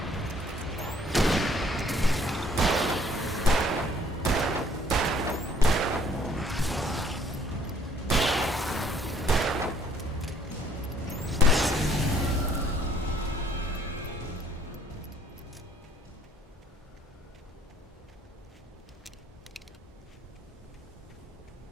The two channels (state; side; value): normal; both; correlation 0.61